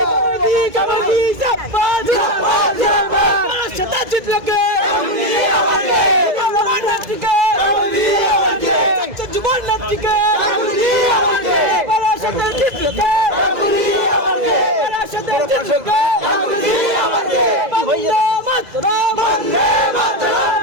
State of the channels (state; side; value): late; left; 2.0 ms